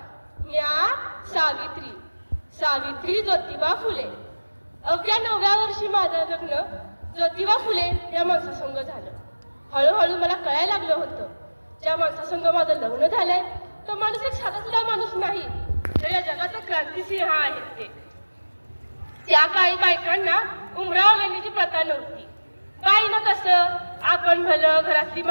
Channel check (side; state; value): both; inverted; correlation -1.00